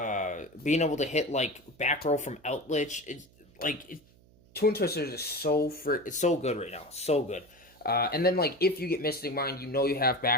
being able to hit, like, back row from Eldritch. It's like Twin Twisters is it's so good right now, so good. And then, like, if you get Mystic Mind, you know you have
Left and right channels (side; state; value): right; noise; hum, 28 dB below the sound